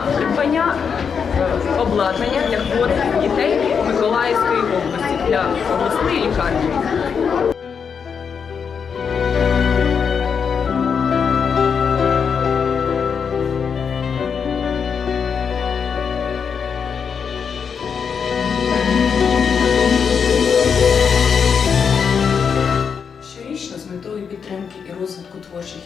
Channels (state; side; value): quieter; right; 6.5 dB